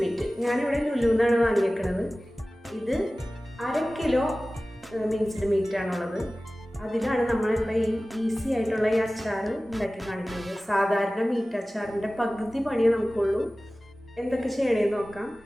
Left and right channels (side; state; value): both; normal; correlation 0.97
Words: ഞാനിവിടെ ലുലുവിന്നാണ് വാങ്ങിയേക്കുന്നത്. ഇത് 1/2 കിലോ മിൻസ്ഡ് മീറ്റാണുള്ളത്. അതിലാണ് നമ്മളിപ്പോൾ ഈ ഈസി ആയിട്ടുള്ള ഈ അച്ചാർ ഉണ്ടാക്കി കാണിക്കുന്നത്. സാധാരണ മീറ്റ് അച്ചാറിൻ്റെ പകുതി പണിയേ നമുക്കുള്ളൂ. എന്തൊക്കെ ചെയ്യണമെന്ന് നോക്കാം.